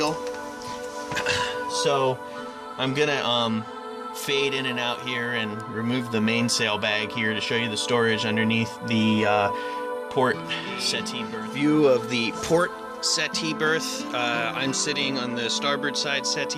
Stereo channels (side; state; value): both; identical; correlation 1.00